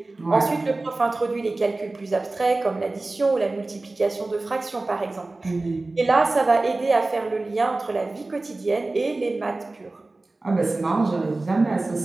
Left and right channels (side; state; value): left; quieter; 3.1 dB